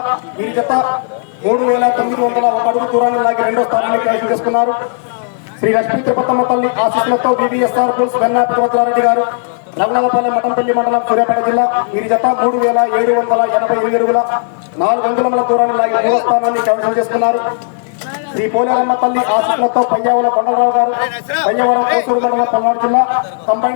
వీరి జత 3901 అడుగు దూరాన్ని లాగి రెండో స్థానాన్ని కైవసం చేసుకున్నారు. శ్రీ లక్ష్మీ తిరుపతమ్మ తల్లి ఆశీస్సులతో బీబీఎస్ఆర్ బుల్స్ వెన్నా పర్వతరారెడ్డి గారు, రఘునాథపల్లి మఠంపల్లి మండలం సూర్యాపేట జిల్లా వీరి జత 3788 అడుగుల 4 అంగుళముల దూరాన్ని లాగి మూడో స్థానాన్ని కైవసం చేసుకున్నారు. శ్రీ పోలేరమ్మ తల్లి ఆశీస్సులతో పయ్యావుల కొండలరావు గారు, పయ్యవరం కోసూరు మండలం పల్నాడు జిల్లా,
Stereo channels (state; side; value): silent; right; digital silence